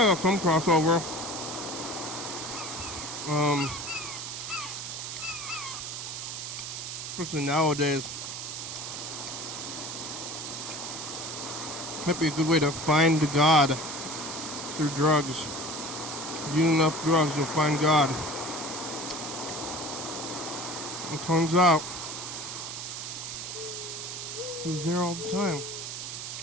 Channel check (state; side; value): noise; right; hiss, 6 dB below the sound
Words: some crossover. Especially nowadays. Might be a good way to find God through drugs. If you eat enough drugs, you'll find God. It turns out he was there all the time.